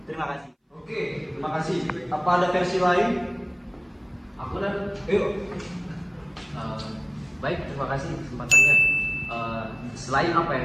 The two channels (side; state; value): both; identical; correlation 1.00